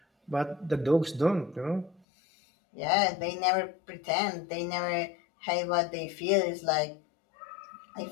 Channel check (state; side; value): drops out; right; at 2.0 s